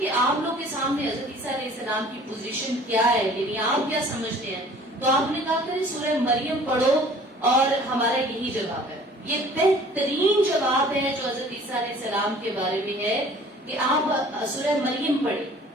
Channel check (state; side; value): normal; both; correlation 0.50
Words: آپ لوگ کے سامنے حضرت عیسیٰ علیہ السلام کی پوزیشن کیا ہے، یعنی آپ کیا سمجھتے ہیں، تو آپ نے کہا کہ سورہ مریم پڑھو اور ہمارا یہی جواب ہے. یہ بہترین جواب ہے جو حضرت عیسیٰ علیہ السلام کے بارے میں ہے کہ آپ سورہ مریم پڑھیں.